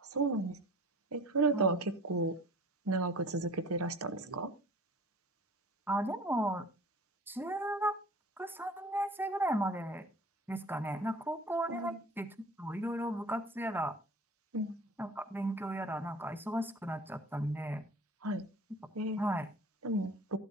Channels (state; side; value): normal; both; correlation 0.44